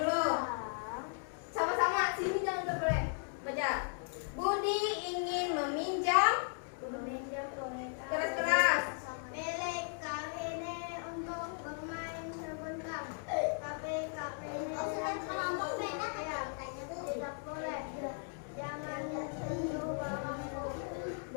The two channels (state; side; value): silent; right; 53 dB below the other